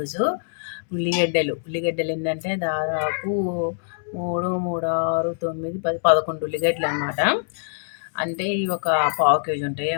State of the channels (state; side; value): silent; right; digital silence